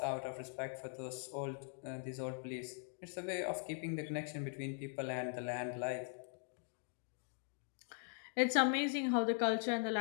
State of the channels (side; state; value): right; silent; 50 dB below the other